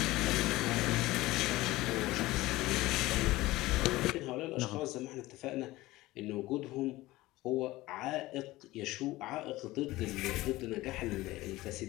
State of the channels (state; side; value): quieter; right; 18.5 dB